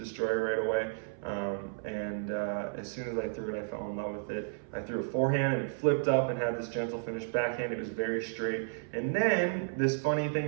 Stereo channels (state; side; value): silent; left; 56 dB below the other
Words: right away. As soon as I threw it, I fell in love with it. I threw a forehand and it flipped up and had this gentle finish backhand. It was very straight. And then this funny